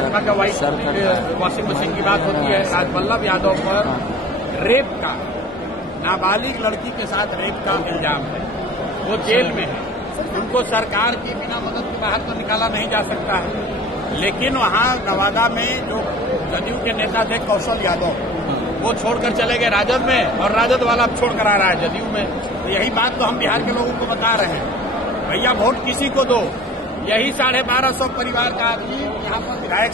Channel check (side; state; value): both; normal; correlation 0.44